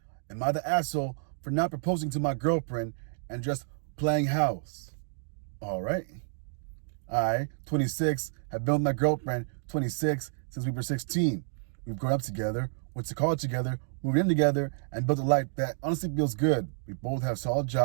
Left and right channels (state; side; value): silent; left; digital silence